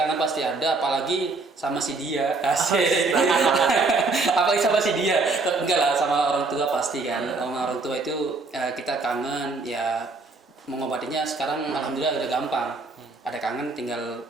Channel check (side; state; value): left; quieter; 3.6 dB